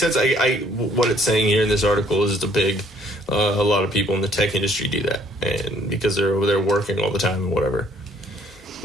What it's saying here in this article is a lot of people in the tech industry do that, and because they're over there working all the time and whatever.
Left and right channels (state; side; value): normal; both; correlation 0.62